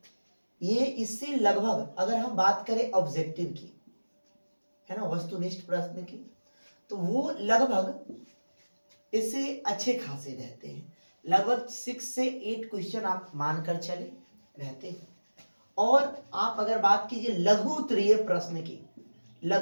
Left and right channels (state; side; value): inverted; both; correlation -1.00